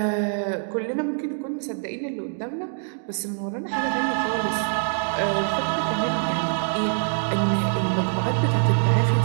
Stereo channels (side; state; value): left; silent; digital silence